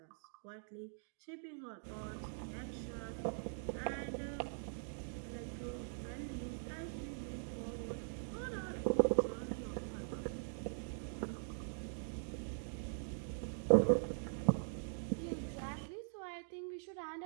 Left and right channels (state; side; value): silent; left; digital silence